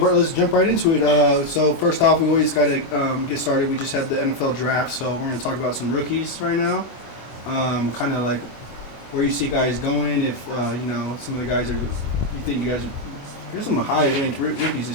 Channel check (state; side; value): late; right; 24 ms